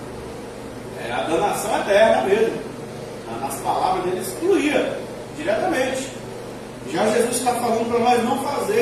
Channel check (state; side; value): identical; both; correlation 1.00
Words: É a danação eterna mesmo. Nas palavras deles, excluía diretamente. Já Jesus está falando para nós não